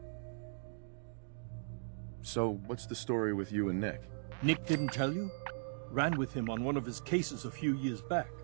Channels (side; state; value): left; silent; digital silence